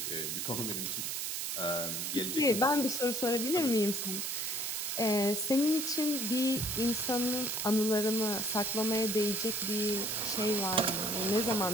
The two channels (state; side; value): noise; right; hiss, 2 dB below the sound